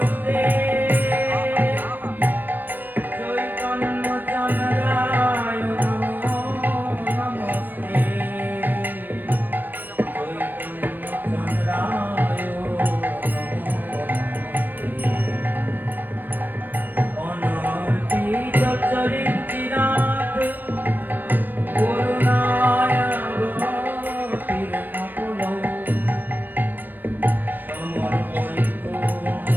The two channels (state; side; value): late; left; 0.091 ms